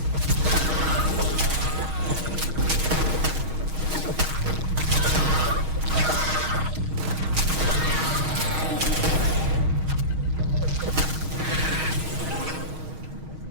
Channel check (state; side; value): late; left; 6.4 ms